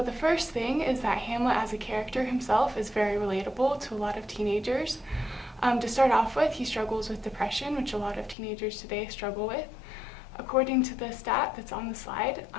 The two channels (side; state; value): right; drops out; at 8.3 s